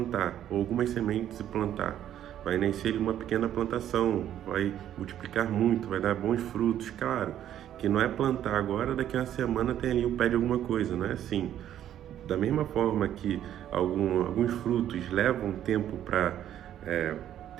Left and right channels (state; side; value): quieter; left; 11.1 dB